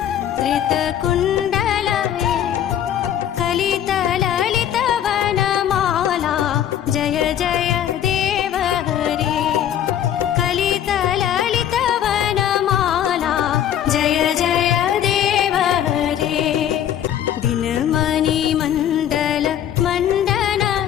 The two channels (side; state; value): right; quieter; 10.4 dB